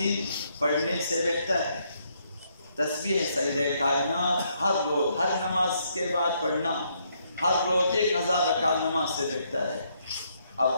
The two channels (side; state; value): both; inverted; correlation -0.73